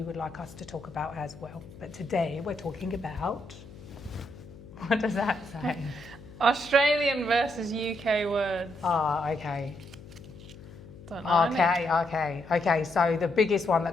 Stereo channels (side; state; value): left; noise; hum, 18 dB below the sound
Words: would like us to talk about as well. But today we're talking about, what does that say? Australian versus UK words. Okay. Don't know. Okay. So the biggest one